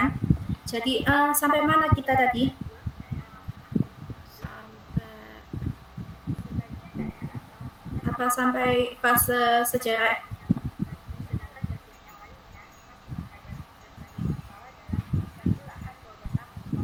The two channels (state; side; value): identical; both; correlation 1.00